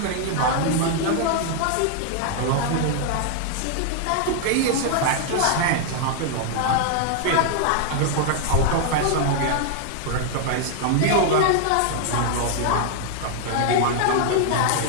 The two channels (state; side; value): different; both; correlation 0.00